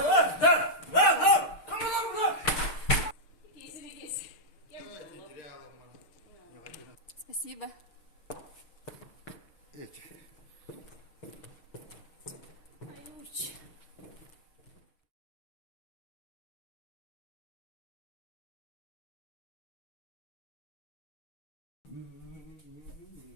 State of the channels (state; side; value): late; right; 6.6 ms